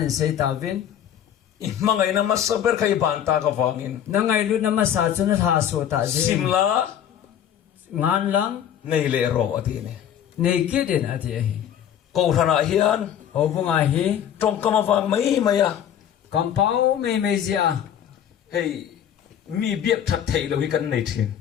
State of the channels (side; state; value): right; quieter; 9.8 dB